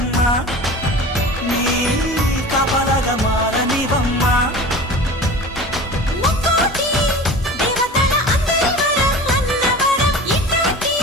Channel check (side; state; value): both; normal; correlation 0.36